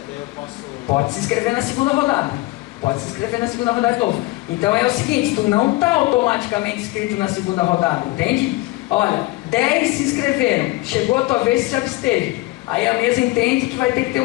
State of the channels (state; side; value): quieter; right; 20.4 dB